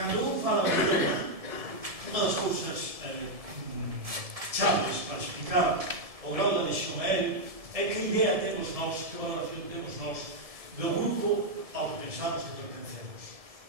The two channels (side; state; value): left; late; 1.7 ms